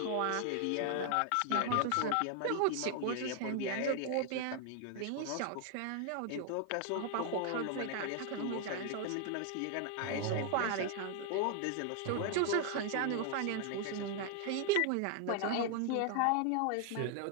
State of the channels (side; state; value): both; different; correlation 0.00